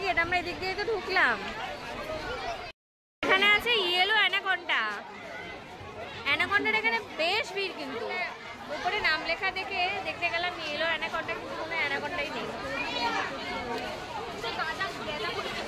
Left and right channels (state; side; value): identical; both; correlation 1.00